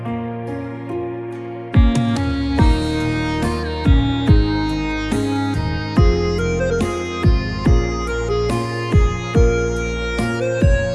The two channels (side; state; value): both; identical; correlation 1.00